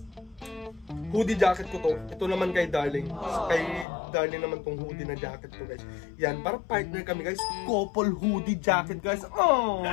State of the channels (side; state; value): right; drops out; at 3.9 s